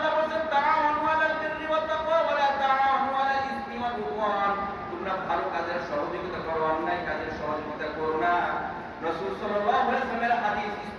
বলেন তাআওয়ানু আলাল বিররি ওয়াত তাকওয়া ওয়া লা তাআওয়ানু আলাল ইসমি ওয়াল উদওয়ান। তোমরা ভালো কাজের সহযোগিতা করো, অন্যায় কাজের সহযোগিতা করো না। রাসূল সাল্লাল্লাহু আলাইহি ওয়াসাল্লামের হাদিস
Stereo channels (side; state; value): both; identical; correlation 1.00